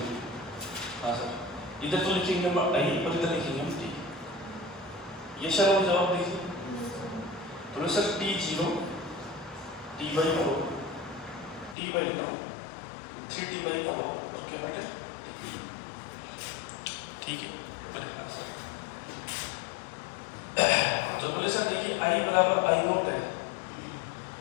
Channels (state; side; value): drops out; right; at 11.8 s